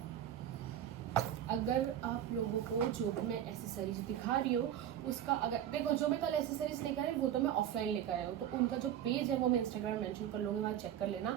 अगर आप लोगों को जो भी मैं एसेसरीज दिखा रही हूँ उसका, अगर देखो जो मैं कल एसेसरीज लेकर आई वो तो मैं ऑफलाइन लेकर आया हूँ, तो उनका जो पेज है वो मैं इंस्टाग्राम मेंशन कर लूँगी, वहाँ चेक कर लेना।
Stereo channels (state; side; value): quieter; left; 10.6 dB